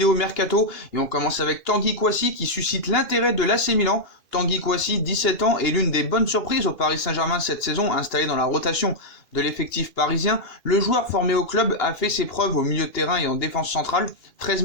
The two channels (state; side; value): late; right; 2.8 ms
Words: Mercato et on commence avec Tanguy Kouassi qui suscite l'intérêt de l'AC Milan. Tanguy Kouassi, 17 ans, est l'une des bonnes surprises au Paris Saint-Germain cette saison, installé dans la rotation de l'effectif parisien. Le joueur formé au club a fait ses preuves au milieu de terrain et en défense centrale, 13